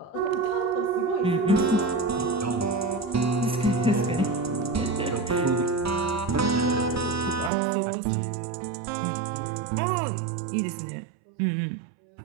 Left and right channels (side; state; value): left; drops out; at 7.5 s